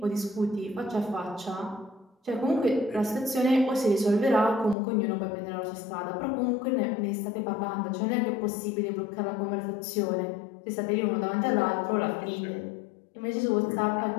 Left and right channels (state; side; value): drops out; right; at 4.8 s